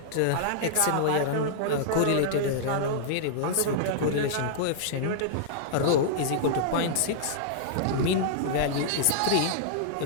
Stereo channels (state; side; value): different; both; correlation -0.02